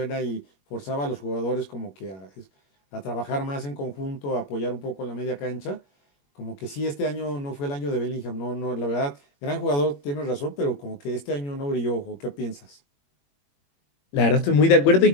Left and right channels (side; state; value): right; late; 21 ms